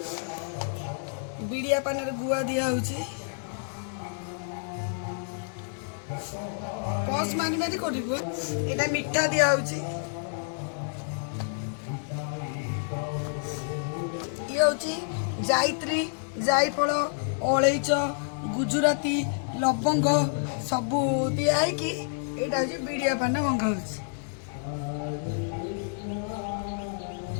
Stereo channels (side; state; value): right; silent; digital silence